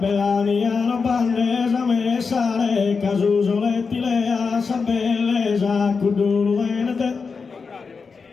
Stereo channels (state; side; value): quieter; right; 5.0 dB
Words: mia non bandesa me sale, casuso lettilea, sa bellesa, cudulu venete.